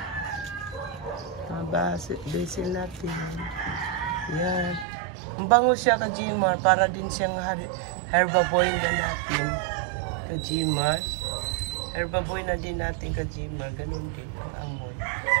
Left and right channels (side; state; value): left; drops out; at 4.9 s